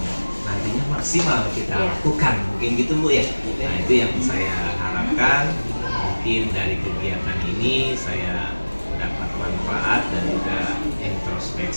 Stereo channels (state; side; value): inverted; both; correlation -1.00